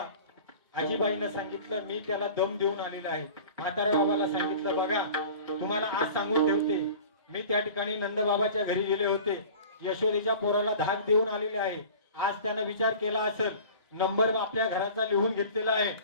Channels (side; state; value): both; inverted; correlation -0.42